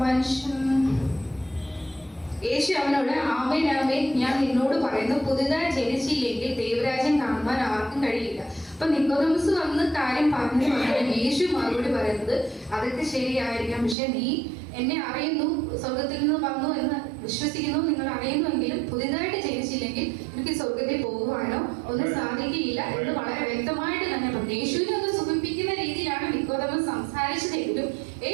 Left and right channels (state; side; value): drops out; left; at 14.0 s